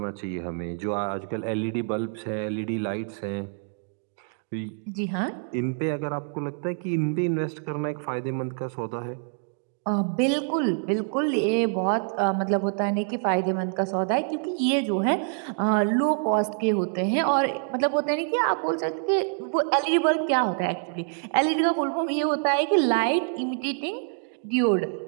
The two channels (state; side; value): silent; left; 61 dB below the other